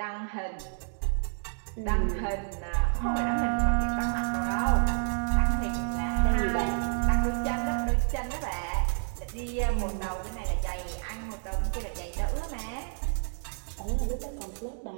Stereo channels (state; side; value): silent; left; 58 dB below the other